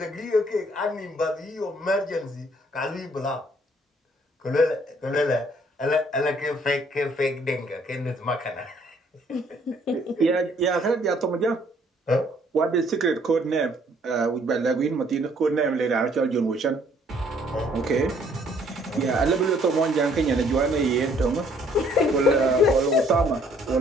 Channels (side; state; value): both; normal; correlation 0.63